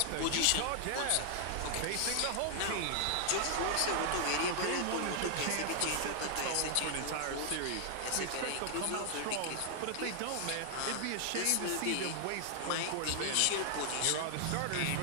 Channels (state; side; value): different; both; correlation 0.00